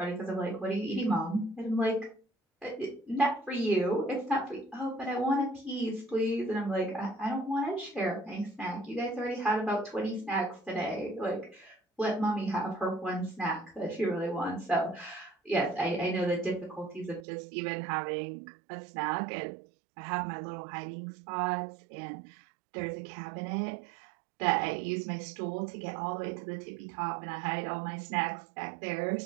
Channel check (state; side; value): drops out; left; at 17.2 s